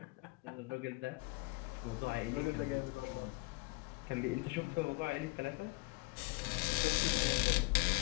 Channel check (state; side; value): quieter; right; 25.9 dB